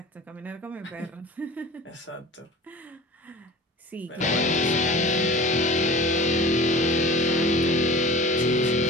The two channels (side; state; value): both; normal; correlation 0.40